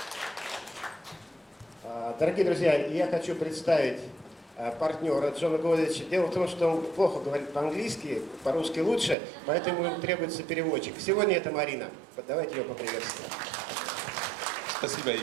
Дорогие друзья, я хочу представить партнера Джона Godzich. Дело в том, что он плохо говорит по-английски, по-русски лучше, поэтому ему требуется переводчик. Сегодня это Марина. Давайте ее поприветствуем. Спасибо,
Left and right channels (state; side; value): drops out; left; at 9.2 s